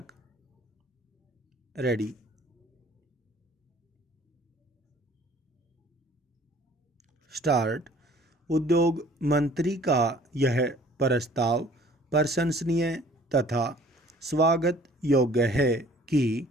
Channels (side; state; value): both; normal; correlation 0.53